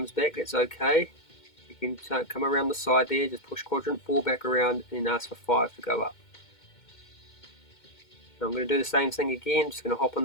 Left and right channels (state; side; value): late; right; 2.1 ms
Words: back, that's okay. You can come around the side there, just push quadrant 4 back around and ask for 5 to go up. So I'm going to do the same thing again, just going to hop on